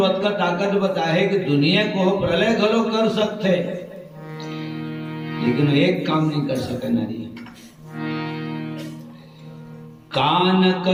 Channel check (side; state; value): both; identical; correlation 1.00